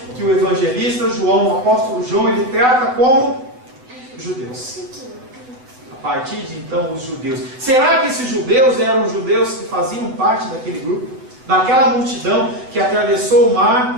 que o evangelista João, o apóstolo João, ele trata como judeus. A partir de então, os judeus. Será que esses judeus eram judeus que faziam parte daquele grupo? Daquela multidão que atravessou o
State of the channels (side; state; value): left; late; 7.9 ms